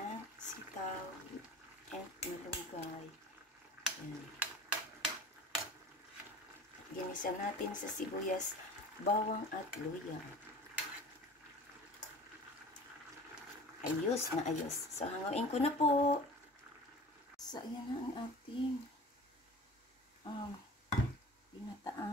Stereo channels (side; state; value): both; normal; correlation 0.41